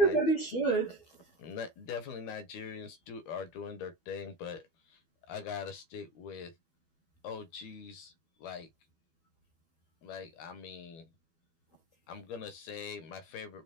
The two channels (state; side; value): late; right; 12 ms